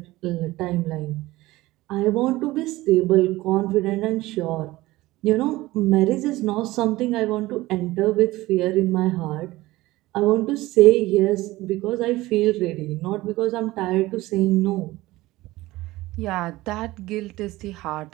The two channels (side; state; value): left; quieter; 18.5 dB